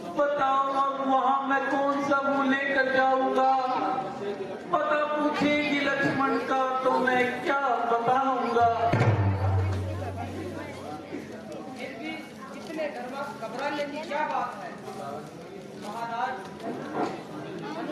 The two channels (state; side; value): identical; both; correlation 1.00